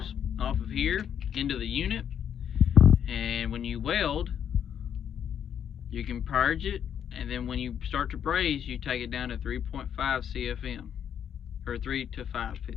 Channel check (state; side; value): quieter; right; 8.8 dB